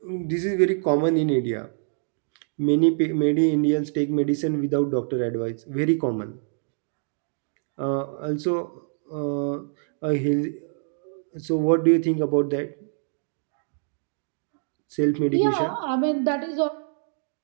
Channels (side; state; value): left; silent; digital silence